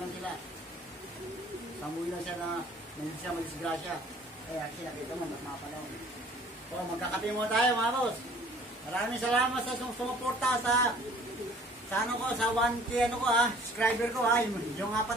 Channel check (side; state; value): both; normal; correlation 0.53